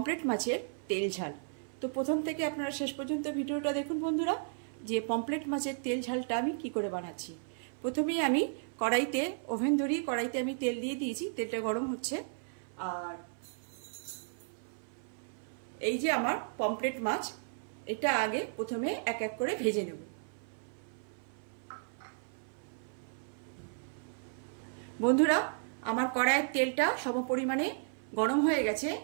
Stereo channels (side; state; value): left; silent; 55 dB below the other